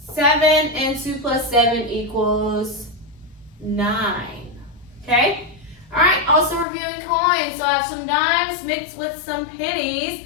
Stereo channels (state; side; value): drops out; right; at 6.7 s